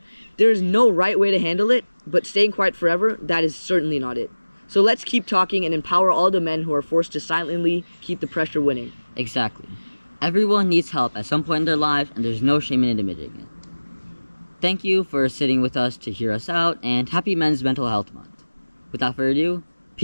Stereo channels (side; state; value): both; inverted; correlation -1.00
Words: There is no right way to handle it, but staying quiet forever, that is certainly not it. So let's keep talking and empower all the men who are forced to silently keep the pressure winning. Exactly. Everyone needs help at some point in their life, and there's no shame in admitting it. Thank you for sitting with us to hear us out, and happy Men's Mental Health Month. Without further ado,